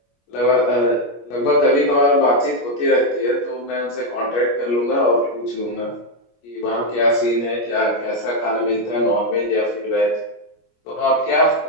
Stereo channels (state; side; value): late; right; 25 ms